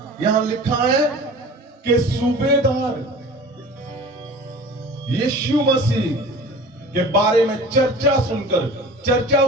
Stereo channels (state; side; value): normal; both; correlation 0.40